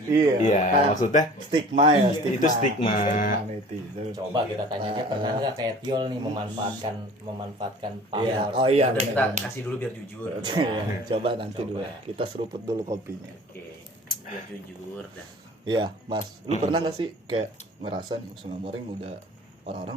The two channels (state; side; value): normal; both; correlation 0.46